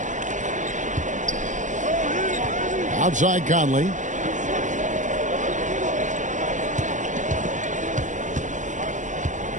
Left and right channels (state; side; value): late; left; 0.36 ms